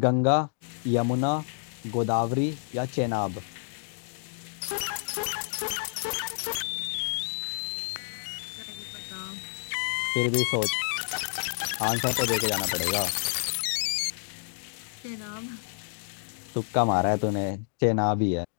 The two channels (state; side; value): silent; right; digital silence